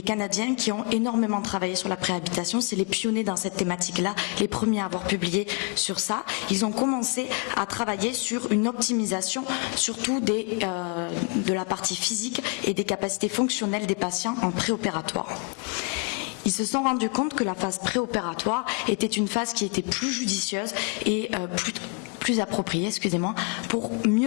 Canadiens qui ont énormément travaillé sur la préhabilitation. C'est les pionniers dans cette thématique-là, les premiers à avoir publié sur ça. Ils ont commencé à travailler sur une optimisation, surtout de la partie physique et des capacités fonctionnelles des patients en préopératoire. Ils se sont rendus compte que la phase préopératoire était une phase qui était plus judicieuse et plus appropriée, pour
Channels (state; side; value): quieter; right; 34.8 dB